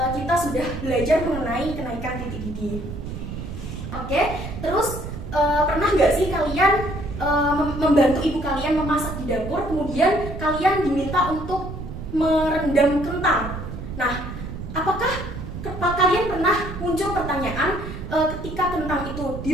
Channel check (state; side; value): noise; right; rumble, 8 dB below the sound